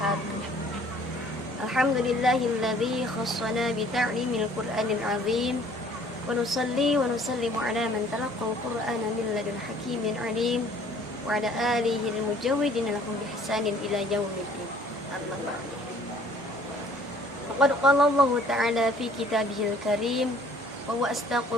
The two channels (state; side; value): normal; both; correlation 0.56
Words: Alhamdulillahilladzi khassana bi ta'limil Qur'anil azim. Wa nusalli wa nusallimu ala man talaqqal Qur'ana min ladun hakimin alim wa ala alihi al-mujawwidin lahum bi ihsanin ila yaumiddin. Amma ba'du. Faqad qala Allah ta'ala fi kitabihil karim wa huwa